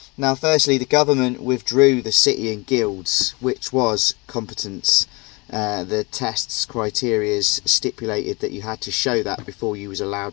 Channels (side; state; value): right; quieter; 27.0 dB